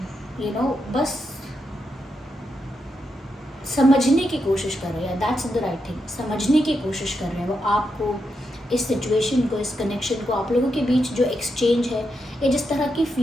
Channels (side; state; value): both; normal; correlation 0.84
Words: बस समझने की कोशिश कर रहे हैं। दैट्स द राइट थिंग, समझने की कोशिश कर रहे हैं वो आपको, इस सिचुएशन को, इस कनेक्शन को, आप लोगों के बीच जो एक्सचेंज है या जिस तरह की